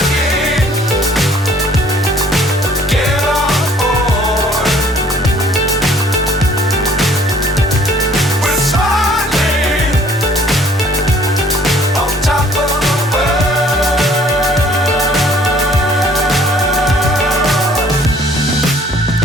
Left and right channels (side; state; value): both; normal; correlation 0.57